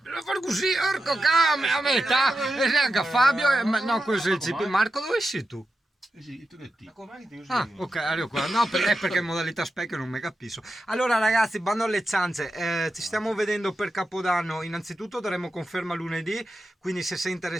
devo fare così, orco came, a metà, e neanche Fabio, no questo è il CP, Marco dove sei tu? Sì, tu che ti? Ah, ok, arrivo qua. No, perché in modalità specchio non mi capisco. Allora, ragazzi, bando alle ciance. Ci stiamo vedendo per Capodanno. Innanzitutto daremo conferma lunedì. Quindi, se sei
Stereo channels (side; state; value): both; normal; correlation 0.90